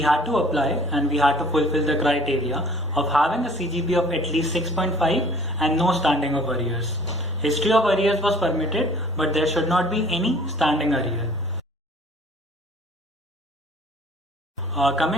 had to apply and we had to fulfill the criteria of having a CGP of at least 6.5 and no standing of arrears. History of arrears was permitted, but there should not be any standing arrear.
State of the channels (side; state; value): both; normal; correlation 0.52